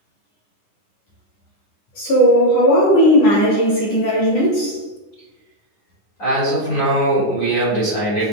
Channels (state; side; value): late; right; 10 ms